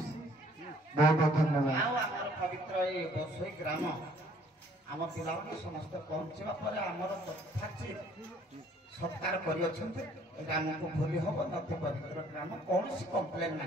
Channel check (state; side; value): normal; both; correlation 0.60